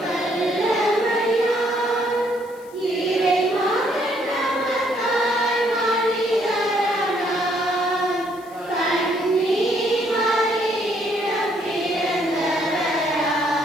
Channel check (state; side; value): noise; left; hiss, 26 dB below the sound